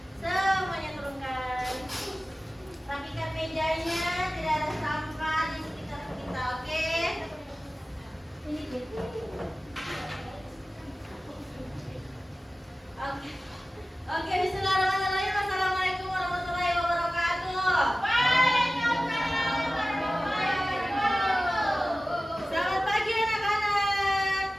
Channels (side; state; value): both; normal; correlation 0.96